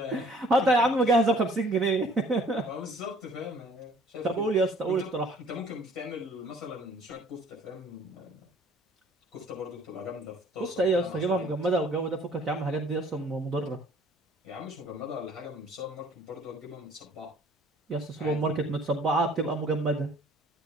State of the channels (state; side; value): normal; both; correlation 0.56